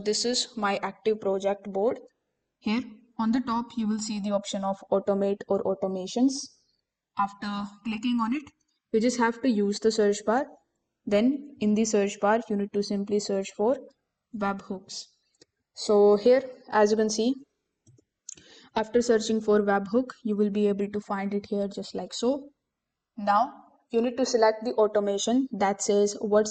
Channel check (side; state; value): both; identical; correlation 1.00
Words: is my active project board. Here on the top, you will see the option of automate or automations. After clicking on it, you just have to use the search bar. Then in the search bar, you need to simply search for webhooks. So here, as you can see, after searching for webhook, you will be able to find it here just like so. Now you need to select the automation that says what